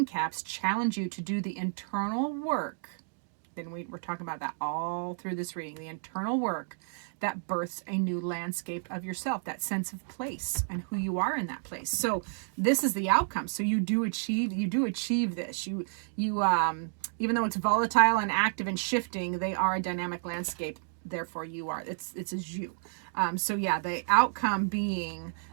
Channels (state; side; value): silent; left; digital silence